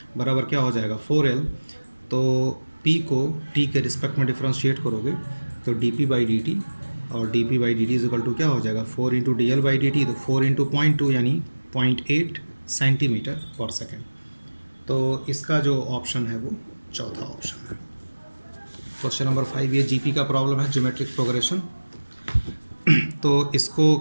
बराबर क्या हो जाएगा, 4l। तो p को t के रिस्पेक्ट में डिफ्रेंशिएट करोगे तो dp/dt, और dp/dt = क्या हो जाएगा, 4 × dl/dt। तो 4 × 0.2 यानी 0.8 cm/s। तो इसका जो ऑप्शन है वो चौथा ऑप्शन है। क्वेश्चन नंबर 5, ये जीपी का प्रॉब्लम है, ज्योमेट्रिक प्रोग्रेशन। तो इसको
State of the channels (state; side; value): inverted; both; correlation -1.00